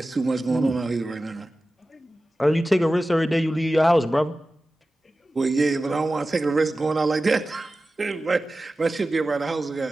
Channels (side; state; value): both; normal; correlation 0.95